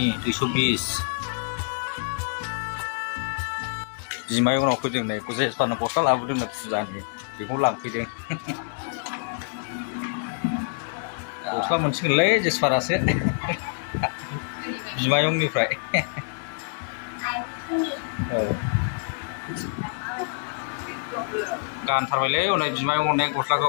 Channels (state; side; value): silent; right; digital silence